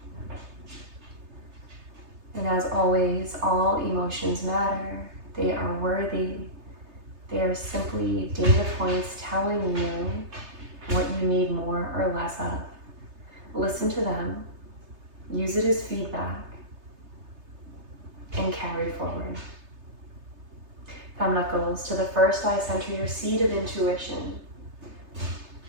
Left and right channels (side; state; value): left; late; 3.3 ms